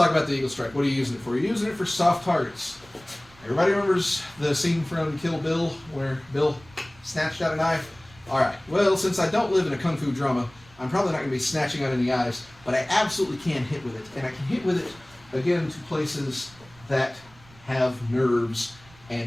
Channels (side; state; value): right; noise; rumble, 26 dB below the sound